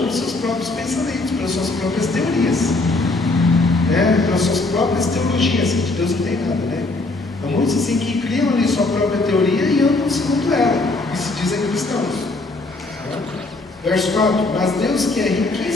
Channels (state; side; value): quieter; right; 3.2 dB